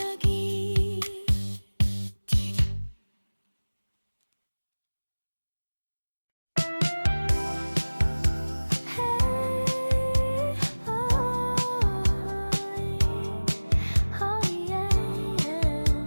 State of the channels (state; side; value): inverted; both; correlation -1.00